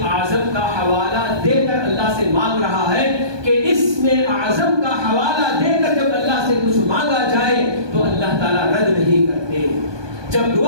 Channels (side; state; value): left; late; 1.2 ms